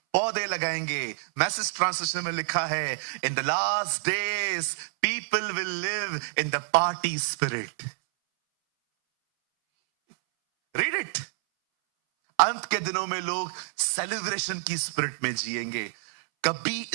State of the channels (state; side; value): silent; left; 60 dB below the other